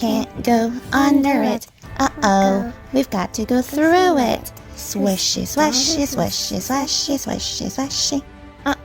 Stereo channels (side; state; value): both; identical; correlation 1.00